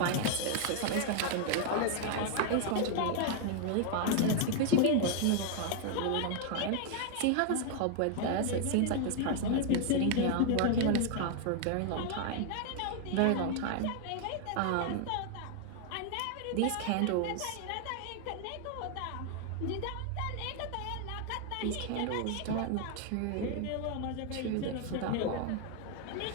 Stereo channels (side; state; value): both; different; correlation 0.00